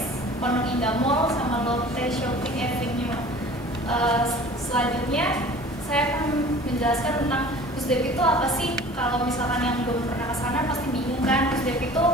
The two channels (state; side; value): normal; both; correlation 0.45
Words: Pondok Indah Mall, sama Lotte Shopping Avenue. Selanjutnya saya akan menjelaskan tentang DeGusDev itu apa sih. Kalau misalkan yang belum pernah kesana pasti bingung kan. DeGusDev itu